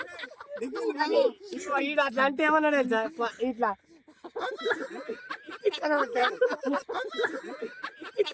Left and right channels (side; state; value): both; identical; correlation 1.00